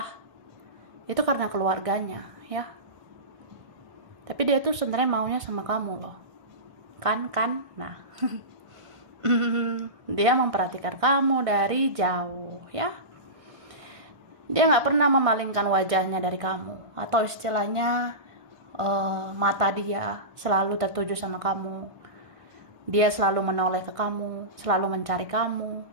itu karena keluarganya ya. Tapi dia tuh sebenarnya maunya sama kamu loh. Kan? Nah. Dia memperhatikan kamu dari jauh ya. Dia gak pernah memalingkan wajahnya dari kamu. Atau istilahnya mata dia selalu tertuju sama kamu. Dia selalu menoleh ke kamu, selalu mencari kamu.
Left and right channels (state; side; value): late; left; 1.6 ms